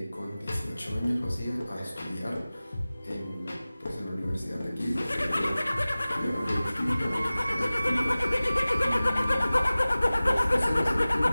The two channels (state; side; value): inverted; both; correlation -0.97